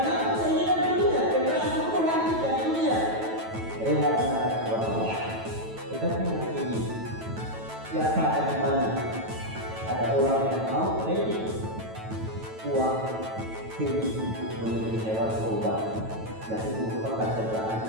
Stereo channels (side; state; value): left; late; 9.1 ms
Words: keinginan dunia, kekerasan itu nanti dari dunia. Rela menarik Allah. Tetapi ini siapa ada di mana? Ada orang yang mau beri uang diri membeli hewan kurban, yang itu merupakan cederaan